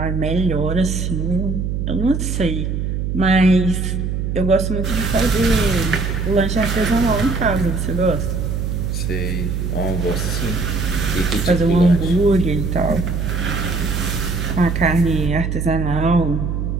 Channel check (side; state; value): right; noise; hum, 1 dB below the sound